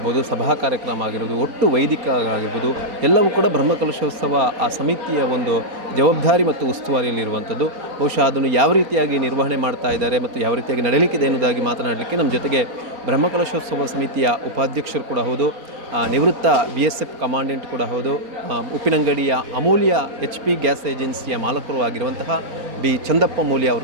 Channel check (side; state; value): left; late; 4.3 ms